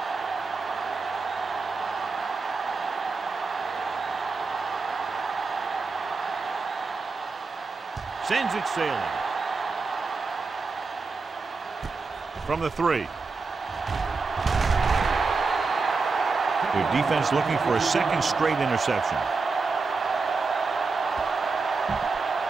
Sends it sailing. From the 3. Their defense looking for a second straight interception.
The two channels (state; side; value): quieter; left; 4.3 dB